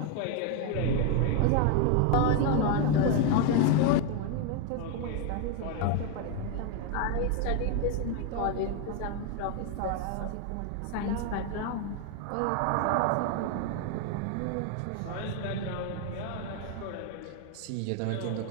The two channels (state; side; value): different; both; correlation 0.01